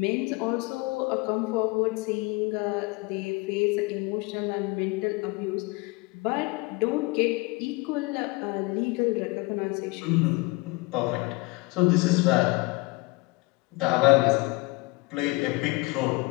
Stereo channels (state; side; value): quieter; right; 24.7 dB